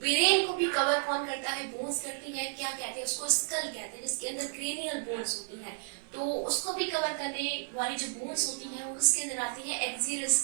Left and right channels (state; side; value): silent; left; digital silence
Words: को भी कवर कौन करता है, बोन्स करती है, क्या कहते हैं उसको, स्कल कहते हैं, जिसके अंदर क्रेनियल बोन्स होती है। तो उसको भी कवर करने वाली जो बोन्स होती हैं वो किसके अंदर आती है, एक्सियल